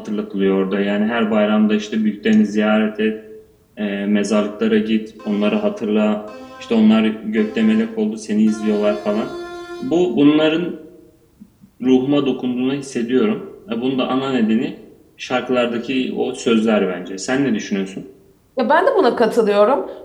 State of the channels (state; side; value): identical; both; correlation 1.00